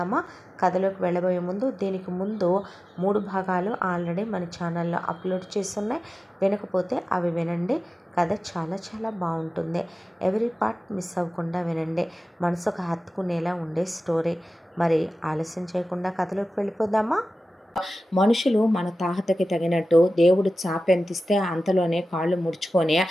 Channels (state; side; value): normal; both; correlation 0.95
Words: కథలోకి వెళ్ళబోయే ముందు దీనికి ముందు 3 భాగాలు ఆల్రెడీ మన ఛానల్లో అప్లోడ్ చేస్తున్నాయి. వినకపోతే అవి వినండి. కథ చాలా చాలా బాగుంటుంది. ఎవరీ పార్ట్ మిస్ అవ్వకుండా వినండి. మనసుకు హత్తుకునేలా ఉండే స్టోరీ. మరి ఆలస్యం చేయకుండా కథలోకి వెళ్ళిపోదామా? మనుషులు మన తాహతకి తగినట్టు దేవుడు చాపెంతిస్తే అంతలోనే కాళ్ళు ముడుచుకొని